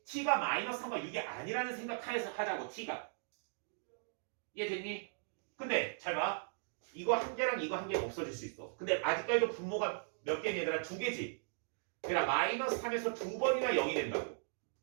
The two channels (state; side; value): silent; left; digital silence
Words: t가 마이너스 3과 6이 아니라는 생각하에서 하자고 t가. 이해됐니? 근데 잘 봐. 이거 한 개랑 이거 한 개가 없어질 수 있어. 근데 아직까지도 분모가 몇 개니 얘들아? 두 개지. 그러니까 마이너스 3에서 두 번이나 0이 된다고.